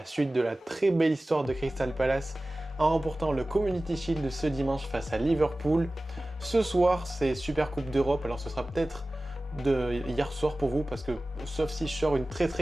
suite de la très belle histoire de Crystal Palace en remportant le Community Shield ce dimanche face à Liverpool. Ce soir, c'est Super Coupe d'Europe. Alors ce sera peut-être de hier soir pour vous parce que sauf si je sors une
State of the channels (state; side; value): normal; both; correlation 0.97